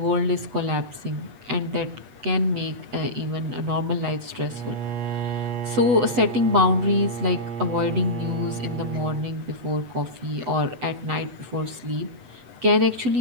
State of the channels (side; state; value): left; late; 7.9 ms